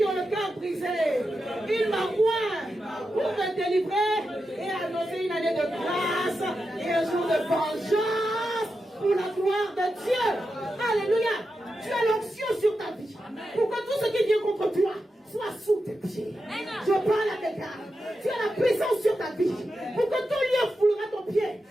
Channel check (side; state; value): both; normal; correlation 0.89